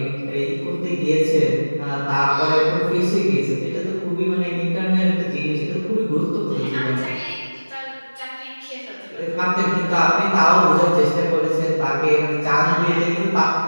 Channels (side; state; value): both; inverted; correlation -1.00